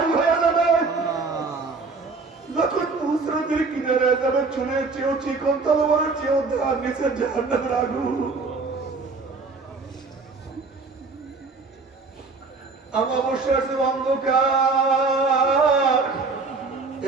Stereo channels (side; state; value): left; quieter; 4.1 dB